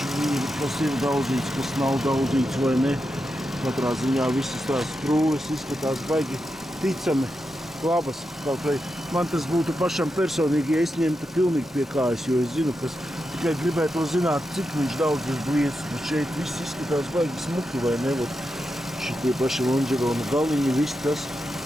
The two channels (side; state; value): both; normal; correlation 0.87